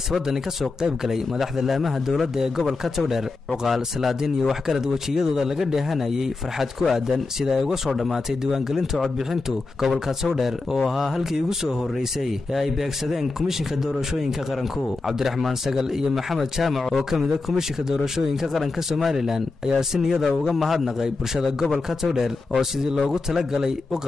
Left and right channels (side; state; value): right; quieter; 3.7 dB